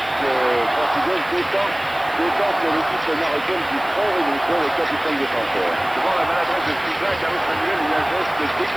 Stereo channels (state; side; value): noise; right; hiss, 23 dB below the sound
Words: portugaise, d'autant que l'équipe marocaine joue très redoutée avec 4 ou 5 défenseurs. Devant la maladresse de Souza, Carlos Manuel a eu un geste de